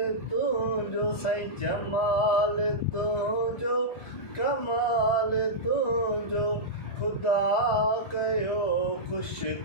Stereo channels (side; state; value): right; late; 1.4 ms